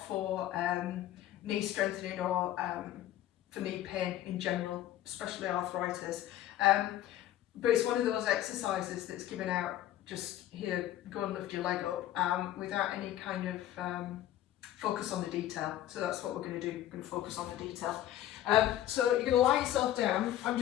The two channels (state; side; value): quieter; right; 13.0 dB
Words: for knee strengthening or for knee pain in general, especially arthritis. But it's one of those exercises that's given out just here, go and lift your leg up without any kind of focus on the detail. So that's what we're going to do. We're going to focus on the detail. So you're going to lie yourself down. I'm